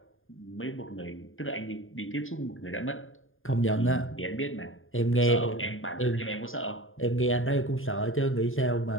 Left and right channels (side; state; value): right; late; 0.59 ms